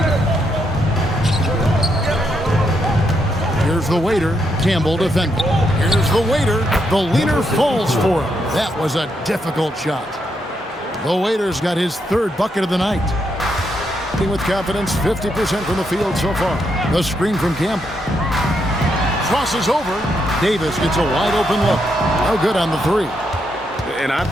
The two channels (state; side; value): normal; both; correlation 0.79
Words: Here's the waiter, Campbell defending. Here's the waiter, the leader falls for him. That was a difficult shot. The waiter's got his 3rd bucket of the night. With confidence, 50% from the field so far. The screen from Campbell. Crosses over. Davis gets a wide open look. No good on the 3. And I